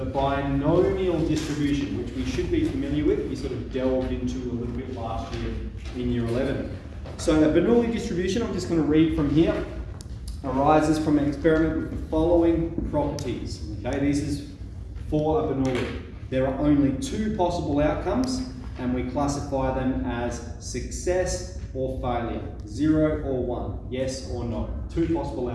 binomial distribution, which we should be familiar with. We sort of delved into a little bit last year in Year 11. So the Bernoulli distribution, I'm just going to read from here, arises from an experiment with the following properties. Okay, this is for a Bernoulli. There are only two possible outcomes, and we classify them as success or failure, 0 or 1, yes or no. Two possible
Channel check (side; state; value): both; identical; correlation 1.00